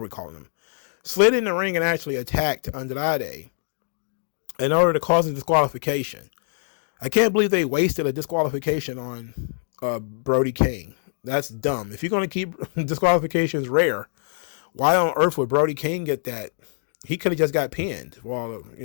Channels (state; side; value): silent; right; digital silence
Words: we're calling him, slid in the ring and actually attacked Andrade in order to cause a disqualification. I can't believe they wasted a disqualification on Brody King. That's dumb. If you're going to keep disqualifications rare, why on earth would Brody King get that? He could have just got pinned for all